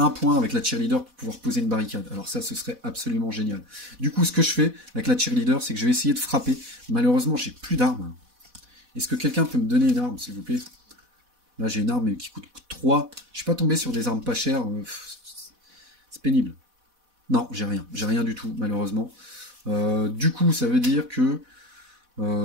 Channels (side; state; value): left; late; 4.1 ms